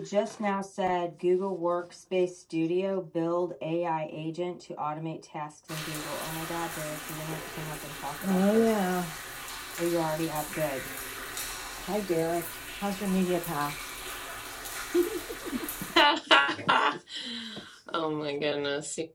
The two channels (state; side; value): identical; both; correlation 1.00